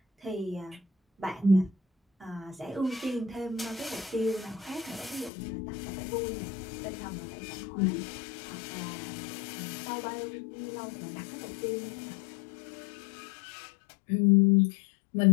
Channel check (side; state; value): right; drops out; at 5.3 s